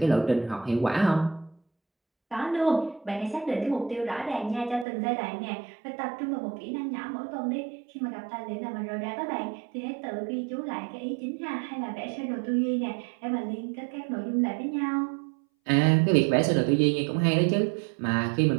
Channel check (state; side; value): drops out; left; at 4.9 s